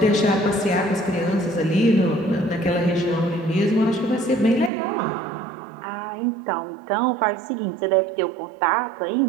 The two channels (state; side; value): drops out; left; at 4.7 s